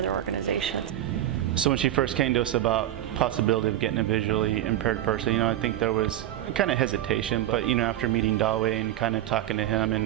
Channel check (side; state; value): left; quieter; 12.8 dB